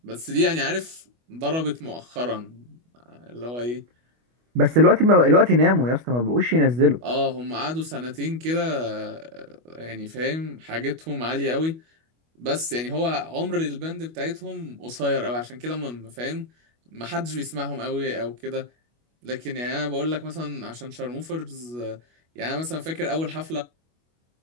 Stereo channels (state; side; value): late; left; 25 ms